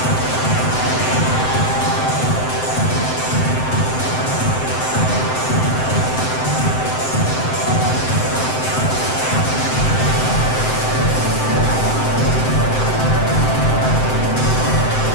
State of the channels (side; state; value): right; late; 7.8 ms